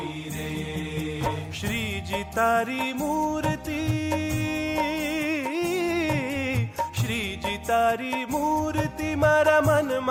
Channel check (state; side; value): identical; both; correlation 1.00